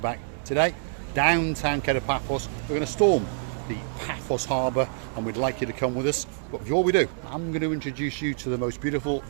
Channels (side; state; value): left; silent; 61 dB below the other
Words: Today, downtown Paphos, we're going to storm the Paphos harbour and we'd like you to come with us. But before we do, I'm going to introduce you to the most beautiful